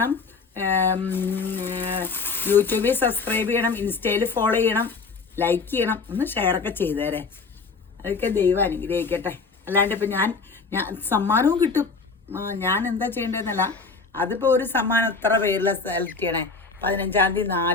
യൂട്യൂബിൽ സബ്സ്ക്രൈബ് ചെയ്യണം, ഇൻസ്റ്റയിൽ ഫോളോ ചെയ്യണം, ലൈക്ക് ചെയ്യണം. ഒന്ന് ഷെയറൊക്കെ ചെയ്തേരെ. അതൊക്കെ ദൈവം അനുഗ്രഹിക്കട്ടെ. അല്ലാണ്ട് ഇപ്പം ഞാൻ സമ്മാനവും കിട്ടും. ഞാൻ എന്താ ചെയ്യേണ്ടതെന്നല്ല. അതിപ്പോൾ ഒരു സമ്മാനം എത്ര പേരിൽ സെലക്ട് ചെയ്യണേ? 15-ാം തീയതി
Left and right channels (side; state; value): right; quieter; 4.5 dB